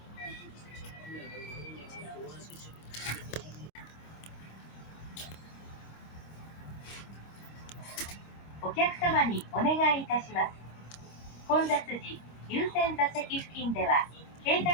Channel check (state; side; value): late; right; 25 ms